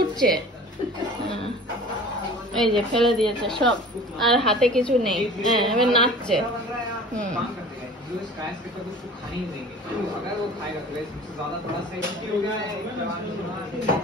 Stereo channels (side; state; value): both; normal; correlation 0.43